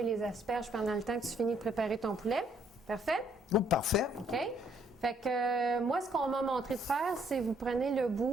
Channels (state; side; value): normal; both; correlation 0.67